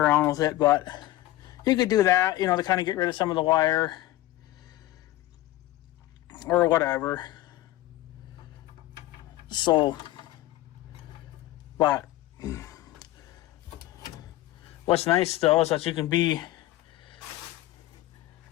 with it, but you could do that, to kind of get rid of some of the wire or whatever. So, but what's nice though is that you can be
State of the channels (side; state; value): right; quieter; 15.9 dB